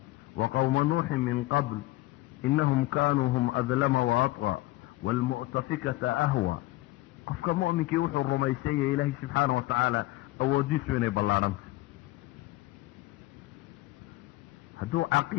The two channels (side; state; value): right; quieter; 18.3 dB